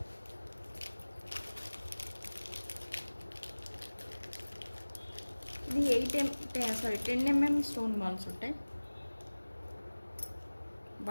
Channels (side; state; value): both; inverted; correlation -1.00